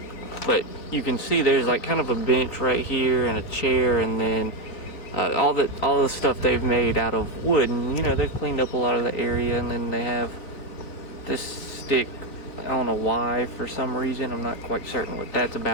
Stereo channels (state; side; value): late; right; 3.8 ms